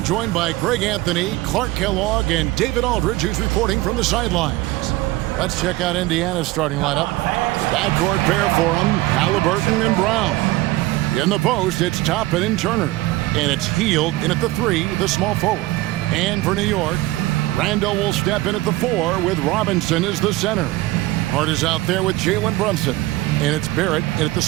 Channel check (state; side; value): quieter; left; 18.5 dB